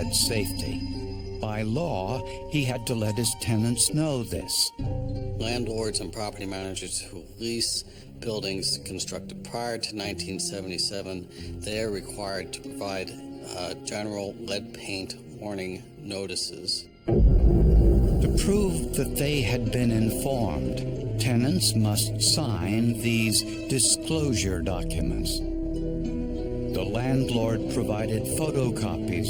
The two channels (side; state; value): both; identical; correlation 1.00